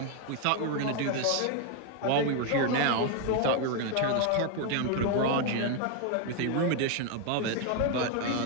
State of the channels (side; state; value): both; different; correlation 0.01